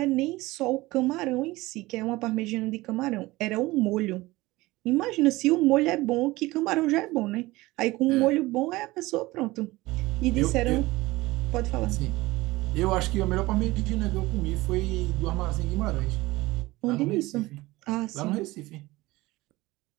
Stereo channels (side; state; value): left; quieter; 19.9 dB